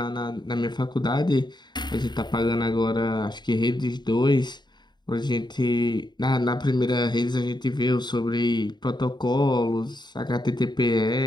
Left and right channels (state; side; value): late; right; 0.21 ms